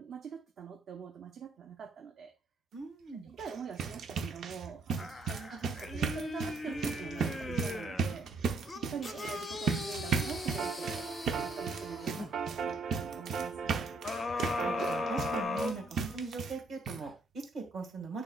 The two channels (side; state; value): left; quieter; 3.1 dB